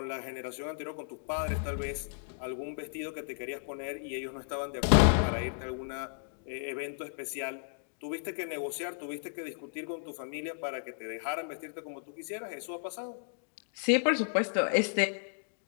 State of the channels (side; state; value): right; silent; digital silence